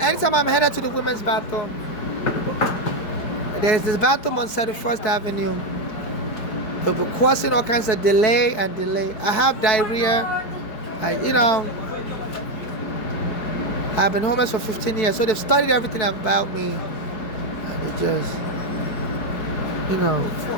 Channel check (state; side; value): late; right; 4.7 ms